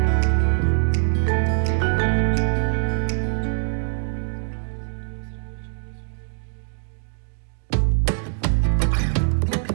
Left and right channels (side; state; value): left; silent; 63 dB below the other